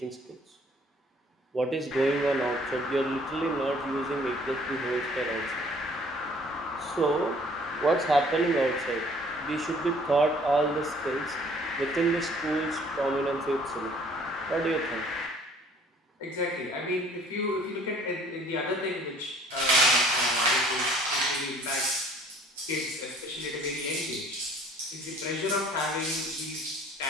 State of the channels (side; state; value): both; normal; correlation 0.56